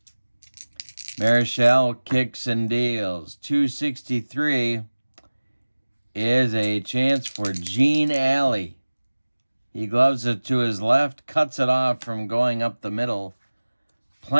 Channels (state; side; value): inverted; both; correlation -1.00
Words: Marichal kicks and deals. 263 is a chance for Gene Alley. He gloves it to his left, cuts it off from going up the middle.